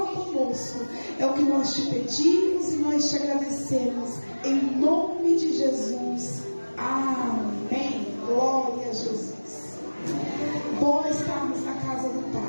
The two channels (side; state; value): both; inverted; correlation -1.00